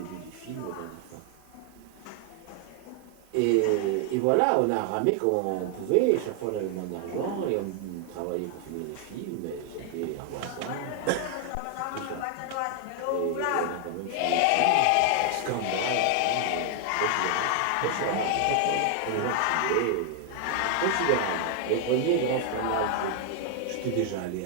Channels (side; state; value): both; different; correlation 0.00